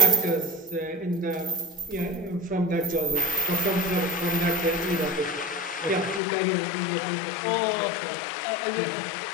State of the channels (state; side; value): drops out; right; at 6.2 s